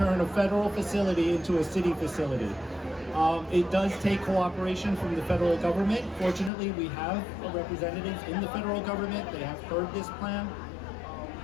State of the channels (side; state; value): right; drops out; at 6.5 s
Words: a federal facility into a city facility? It does take cooperation from the federal government. Fortunately, we have representatives in the federal government. They have heard this plan.